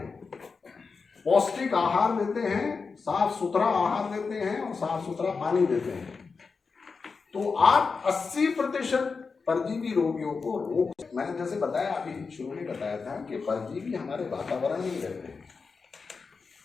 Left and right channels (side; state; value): right; quieter; 4.8 dB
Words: पौष्टिक आहार देते हैं, साफ सुथरा आहार देते हैं और साफ सुथरा पानी देते हैं, तो आप 80% परजीवी रोगियों को रोक। मैंने जैसे बताया, अभी शुरू में बताया था कि परजीवी हमारे वातावरण में ही रहते हैं